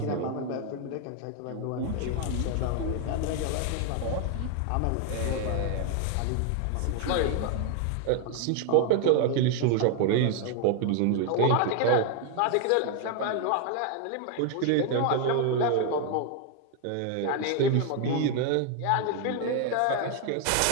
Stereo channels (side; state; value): both; different; correlation 0.01